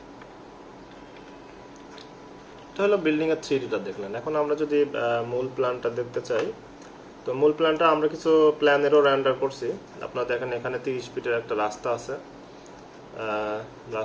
এটা হলো বিল্ডিং এর 3Dটা দেখলেন। এখন আমরা যদি মূল প্ল্যানটা দেখতে চাই, তো মূল প্ল্যানটা আমরা কিছু প্ল্যানেরও রেন্ডার করছি। আপনারা দেখেন এখানে 30 ফিটের একটা রাস্তা আছে,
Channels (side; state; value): both; identical; correlation 1.00